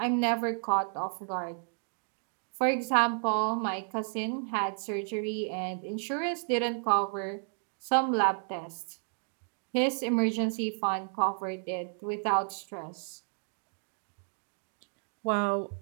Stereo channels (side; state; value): left; silent; 57 dB below the other